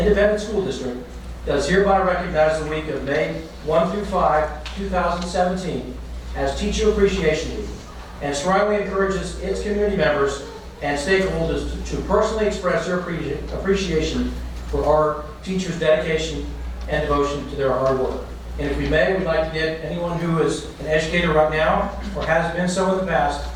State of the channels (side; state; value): both; identical; correlation 1.00